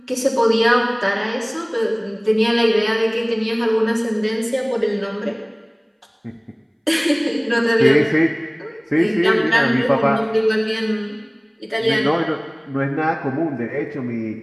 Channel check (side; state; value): both; identical; correlation 1.00